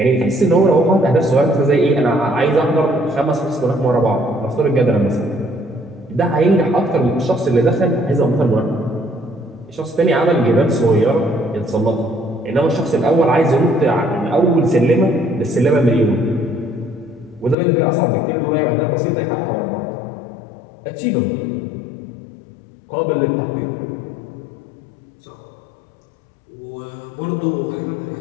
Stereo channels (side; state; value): right; drops out; at 17.6 s